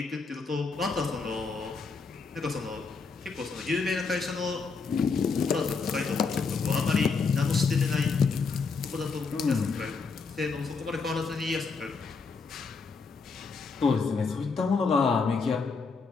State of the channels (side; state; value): right; quieter; 4.7 dB